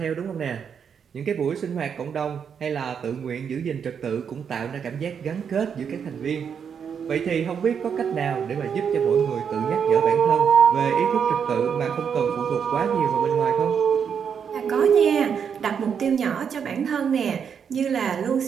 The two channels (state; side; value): quieter; left; 7.2 dB